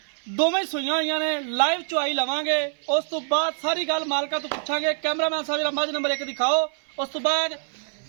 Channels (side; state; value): left; silent; 57 dB below the other